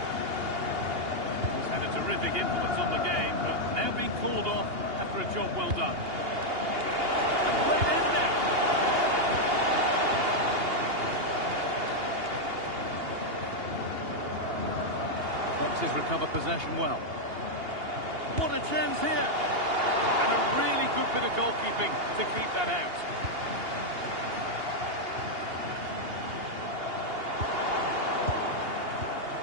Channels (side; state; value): left; late; 2.8 ms